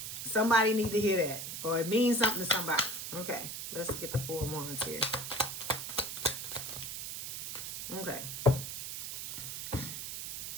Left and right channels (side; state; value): right; noise; hiss, 6 dB below the sound